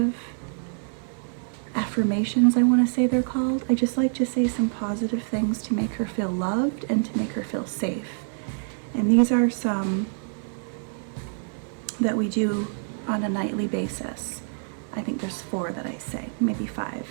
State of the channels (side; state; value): left; silent; 61 dB below the other